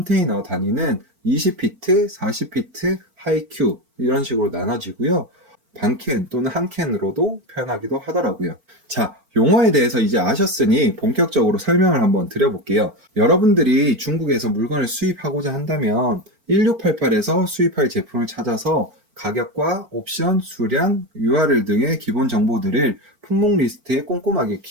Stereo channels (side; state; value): left; late; 4.4 ms